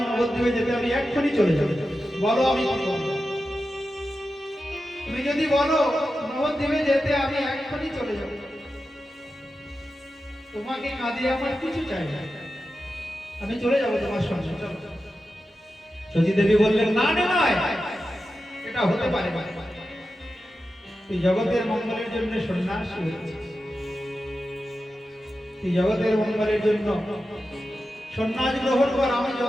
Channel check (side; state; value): both; normal; correlation 0.91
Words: নবদ্বীপে যেতে, আমি এক্ষুনি চলে যাব। বলো আমি কি করব? তুমি যদি বলো নবদ্বীপে যেতে, আমি এক্ষুনি চলে যাব। তোমাকে কাঁদিয়ে আমার কিছু চাই না, আমি চলে যাব তোমার সঙ্গে। সতী দেবী বললেন, না নয়, এটা হতে পারে না। তুই জগতের মঙ্গলের জন্য সন্ন্যাসী হয়েছিস, তুই জগতের মঙ্গলের জন্য সন্ন্যাস গ্রহণ কর। আমি